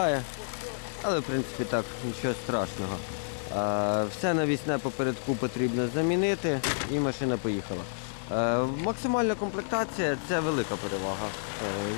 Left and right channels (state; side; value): silent; right; digital silence